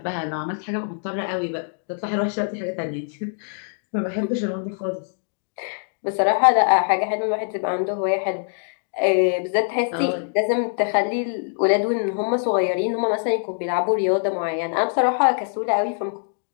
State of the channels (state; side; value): silent; right; digital silence